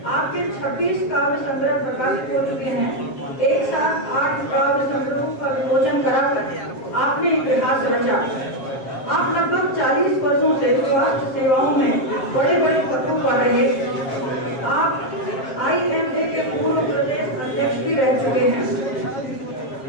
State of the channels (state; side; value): late; right; 7.4 ms